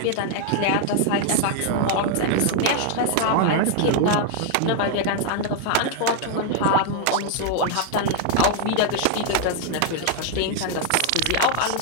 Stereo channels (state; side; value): different; both; correlation 0.00